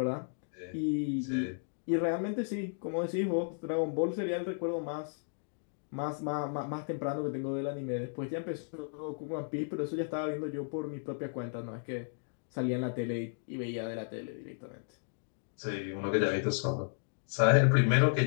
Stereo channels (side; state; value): right; silent; digital silence